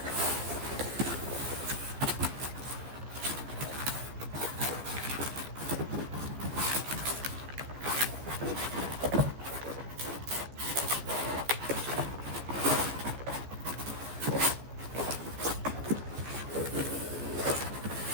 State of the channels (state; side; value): late; left; 15 ms